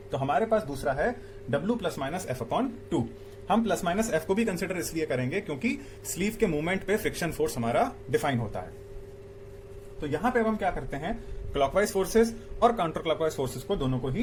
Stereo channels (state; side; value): identical; both; correlation 1.00